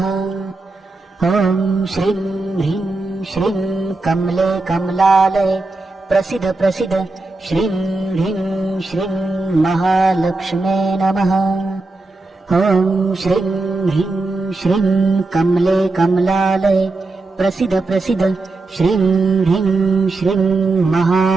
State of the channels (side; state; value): left; quieter; 3.3 dB